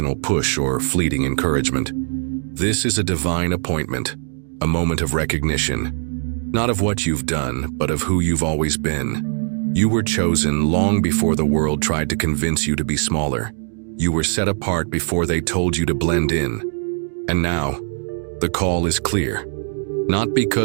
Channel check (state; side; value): silent; left; 55 dB below the other